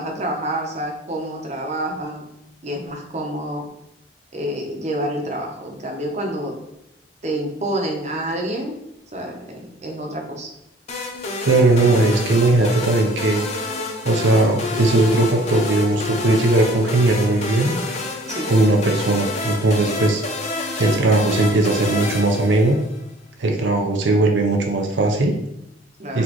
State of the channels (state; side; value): normal; both; correlation 0.52